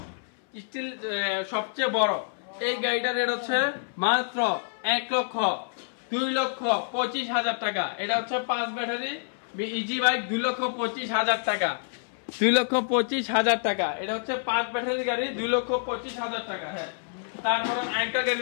স্টিল, সবচেয়ে বড়। এই গাড়িটার রেট হচ্ছে মাত্র 1,02,25,000 টাকা। এটা হচ্ছে 5 ব্যাটারি ইজি বাইক, 2,25,000 টাকা, 2,25,000 টাকা। এটা হচ্ছে 5 ব্যাটারি গাড়ি, 2,25,000 টাকা। হ্যাঁ, তারপর আরেকটা গাড়ি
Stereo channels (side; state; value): right; silent; 58 dB below the other